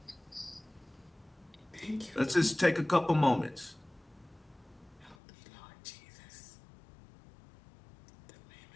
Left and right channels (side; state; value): right; drops out; at 5.2 s